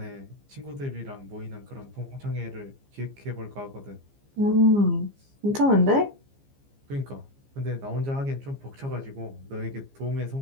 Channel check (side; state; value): left; late; 15 ms